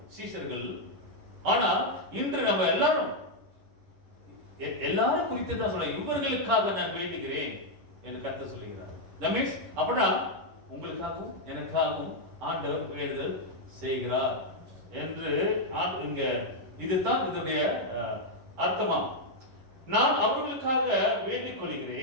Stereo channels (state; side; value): late; left; 10 ms